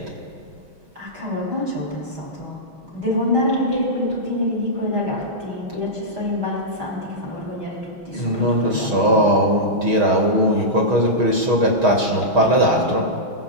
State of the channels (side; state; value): left; late; 6.3 ms